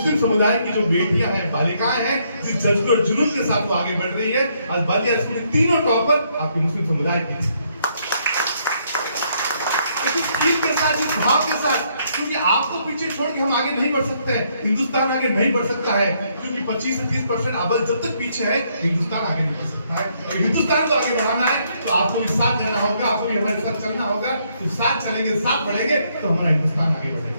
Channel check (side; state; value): both; inverted; correlation -0.72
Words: समुदाय की जो बेटियां हैं, बालिकाएं हैं, जिस जज्बे और जुनून के साथ वो आगे बढ़ रही है, आज बालिया स्कूल के तीनों टॉपर आपके मुस्लिम समुदाय की के साथ, इस भाव के साथ, क्योंकि आपको पीछे छोड़ के हम आगे नहीं बढ़ सकते हैं, हिंदुस्तान आगे नहीं बढ़ सकता है, क्योंकि 25 से 30% आबादी जब तक पीछे है, हिंदुस्तान आगे नहीं बढ़ सकता है। और हिंदुस्तान को आगे बढ़ाना है तो आपको भी साथ देना होगा, आपको भी हमारे साथ चलना होगा। तो साथ चलेंगे, साथ बढ़ेंगे तो हमारा हिंदुस्तान आगे